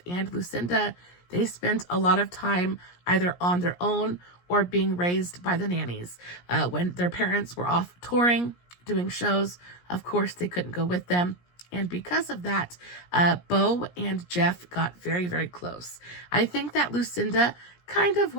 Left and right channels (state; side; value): late; right; 17 ms